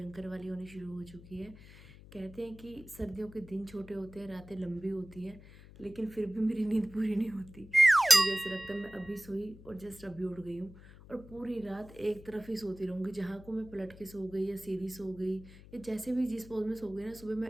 वाली होनी शुरू हो चुकी है। कहते हैं कि सर्दियों के दिन छोटे होते हैं, रातें लंबी होती हैं, लेकिन फिर भी मेरी नींद पूरी नहीं होती। मुझे ऐसा लगता है मैं अभी सोई और जस्ट अभी उठ गई हूँ और पूरी रात एक तरफ ही सोती रहूँगी। जहाँ को मैं पलट के सो गई या सीधी सो गई या जैसे भी जिस पोज में सो गई ना, सुबह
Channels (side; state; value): left; noise; hum, 19 dB below the sound